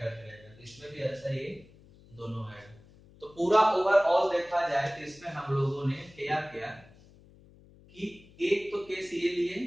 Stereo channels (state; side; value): noise; left; hum, 25 dB below the sound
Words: रहेगा। तो इसमें भी ऐसा ही दोनों आएगा। तो पूरा ओवरऑल देखा जाए तो इसमें हम लोगों ने क्या किया कि एक तो केस ये लिए